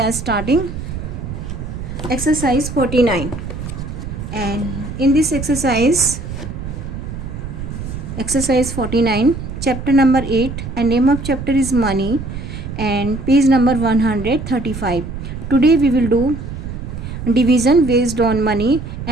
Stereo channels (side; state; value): right; noise; rumble, 8 dB below the sound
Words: starting exercise 49. And in this exercise 49, chapter number 8, and name of chapter is money, and page number 135. Today we will do division based on money,